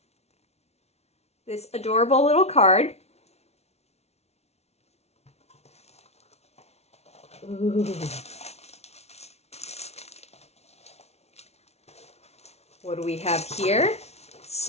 this adorable little card. Ooh. What do we have here?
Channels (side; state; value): right; late; 0.31 ms